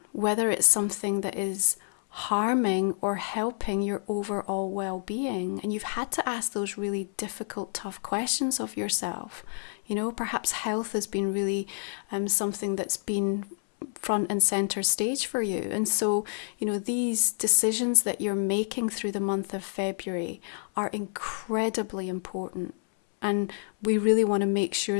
whether it's something that is harming or helping your overall well-being. And you've had to ask those really difficult, tough questions of yourself. You know, perhaps health has been really something that's been front and center stage for you. And so, you know, these decisions that you're making through the month of February are incredibly important. And we really want to make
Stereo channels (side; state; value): right; silent; 59 dB below the other